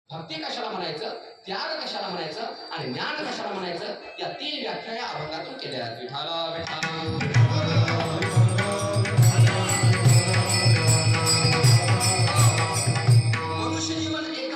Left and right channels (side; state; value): both; identical; correlation 1.00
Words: भक्ती कशाला म्हणायचं, त्याग कशाला म्हणायचं आणि ज्ञान कशाला म्हणायचं, या 3 व्याख्या या अभंगातून केल्या आहेत. विठाला मनुष्य जीवन